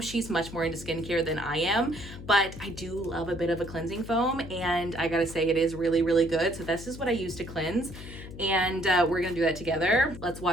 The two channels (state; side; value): noise; left; hum, 13 dB below the sound